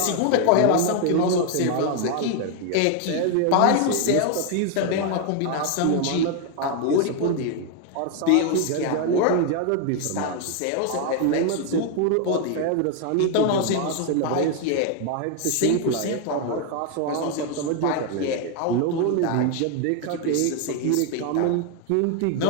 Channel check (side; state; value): both; different; correlation 0.01